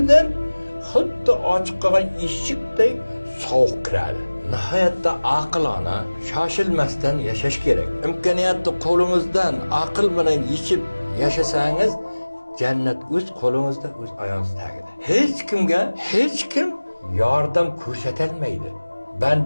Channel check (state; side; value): inverted; both; correlation -1.00